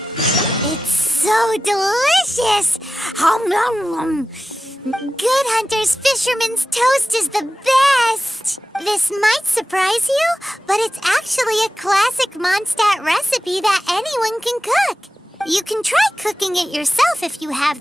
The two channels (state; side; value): normal; both; correlation 0.93